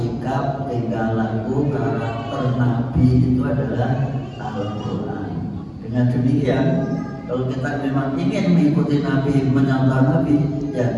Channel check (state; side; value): identical; both; correlation 1.00